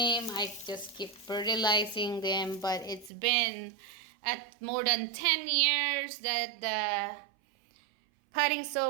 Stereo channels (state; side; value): drops out; left; at 3.1 s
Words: I just keep fertilizing them, but it's been at more than 10 years that potting